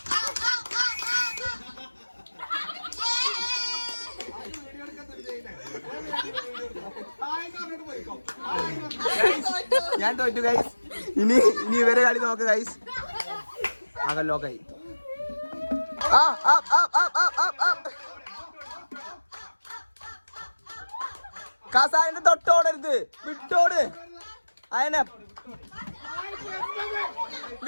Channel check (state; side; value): inverted; both; correlation -1.00